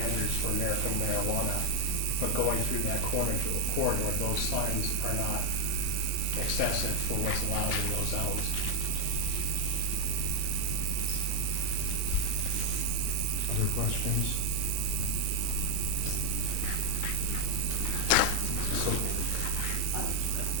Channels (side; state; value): both; different; correlation 0.00